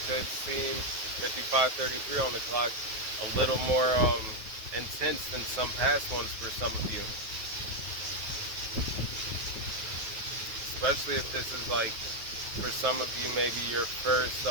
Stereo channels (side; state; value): left; late; 9.5 ms